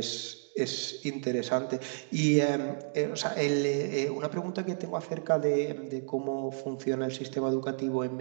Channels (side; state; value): left; silent; digital silence